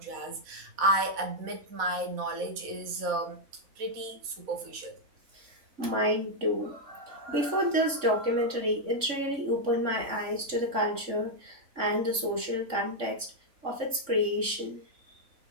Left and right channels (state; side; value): late; left; 3.6 ms